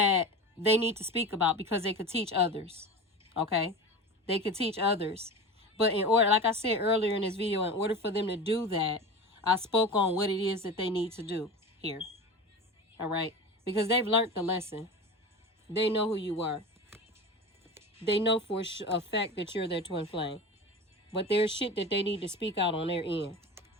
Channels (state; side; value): normal; both; correlation 0.30